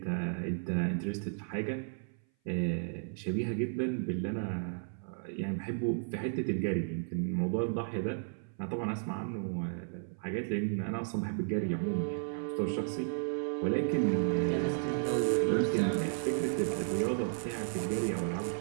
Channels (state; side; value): silent; left; 55 dB below the other